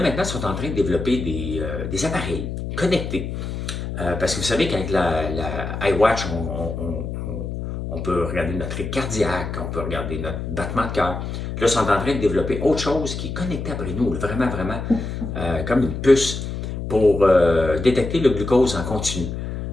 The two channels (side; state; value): left; noise; hum, 5 dB below the sound